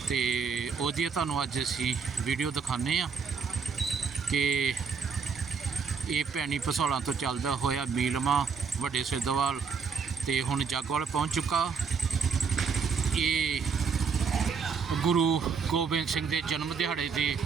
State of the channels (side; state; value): left; quieter; 5.7 dB